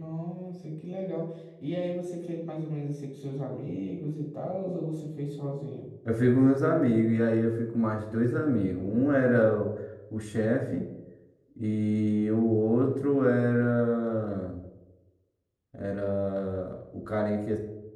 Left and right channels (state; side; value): identical; both; correlation 1.00